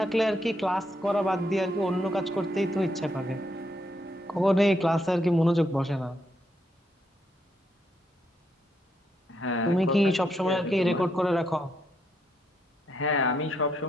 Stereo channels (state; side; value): normal; both; correlation 0.77